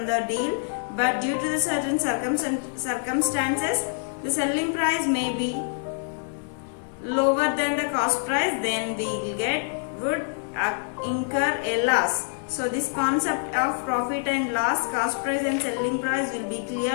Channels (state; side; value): silent; right; 61 dB below the other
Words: the deal, but due to the certain circumstances, the selling price may be lower than the cost price, then we would incur a loss. So this concept of profit and loss, cost price and selling price will be